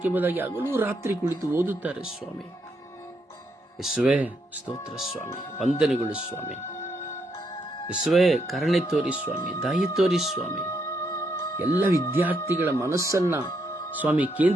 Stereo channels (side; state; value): both; normal; correlation 0.77